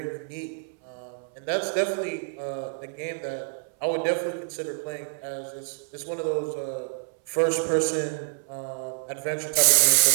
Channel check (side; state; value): left; silent; 60 dB below the other